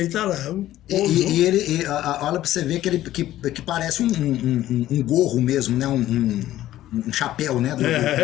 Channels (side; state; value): right; quieter; 13.9 dB